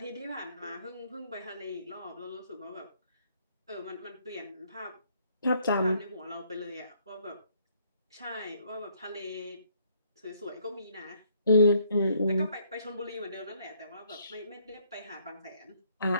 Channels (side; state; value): both; inverted; correlation -0.67